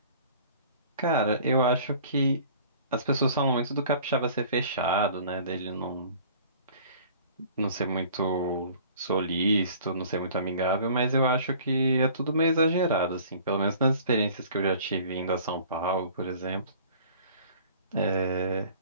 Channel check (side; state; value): both; inverted; correlation -0.49